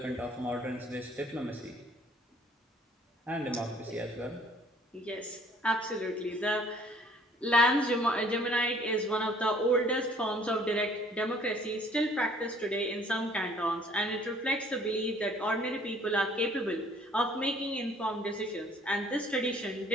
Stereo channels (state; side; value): normal; both; correlation 0.58